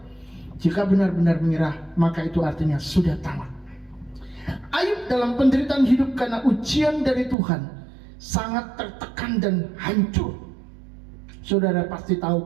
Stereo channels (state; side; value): drops out; left; at 7.4 s